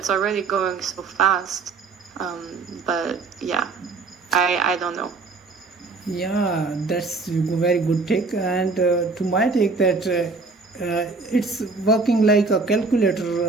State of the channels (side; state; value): left; quieter; 4.0 dB